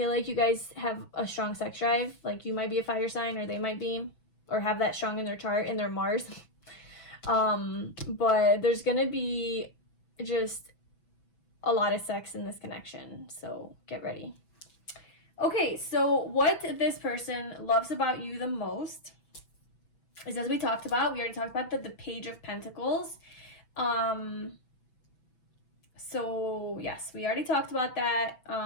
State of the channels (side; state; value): right; late; 6.0 ms